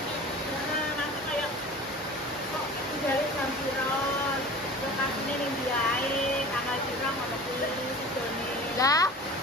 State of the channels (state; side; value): normal; both; correlation 0.39